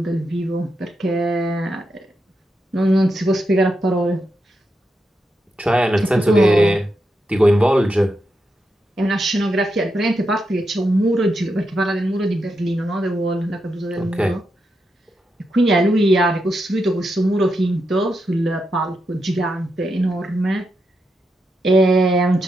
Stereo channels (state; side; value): normal; both; correlation 0.85